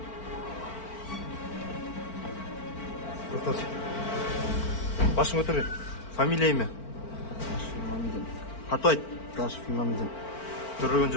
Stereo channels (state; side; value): late; right; 4.4 ms